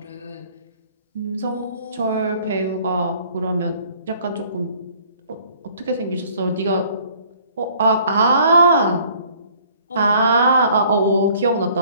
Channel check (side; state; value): both; inverted; correlation -0.57